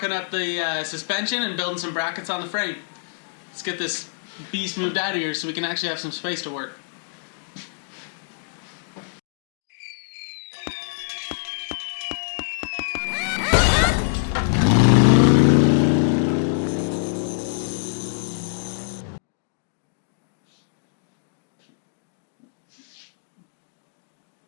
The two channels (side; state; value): right; silent; digital silence